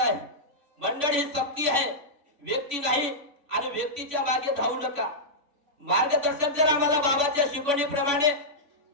आहे. मंडळ ही शक्ती आहे, व्यक्ती नाही. आणि व्यक्तीच्या मागे धावू नका. मार्गदर्शक जर आम्हाला बाबाच्या शिकवणीप्रमाणे,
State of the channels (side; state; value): left; late; 3.6 ms